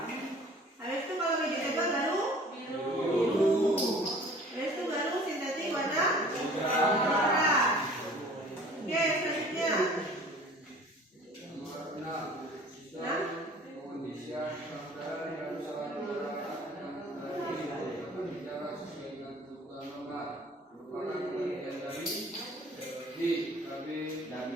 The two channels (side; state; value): both; normal; correlation 0.49